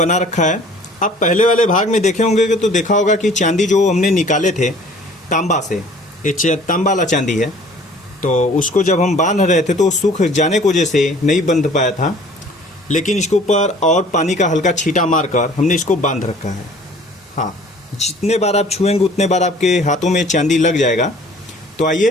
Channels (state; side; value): normal; both; correlation 0.51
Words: रखा है। आप पहले वाले भाग में देखे होंगे कि तो देखा होगा कि चांदी जो हमने निकाले थे तांबा से, ये तांबा वाला चांदी है। तो उसको जब हम बांध रहे थे तो सूख जाने की वजह से नहीं बंध पाया था, लेकिन इसके ऊपर और पानी का हल्का छींटा मारकर हमने इसको बांध रखा है। हाँ, जितने बार आप छुएंगे उतने बार आपके हाथों में चांदी लग जाएगा। तो